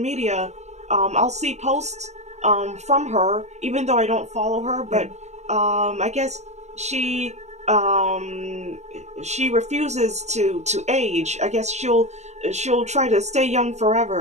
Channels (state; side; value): late; left; 0.33 ms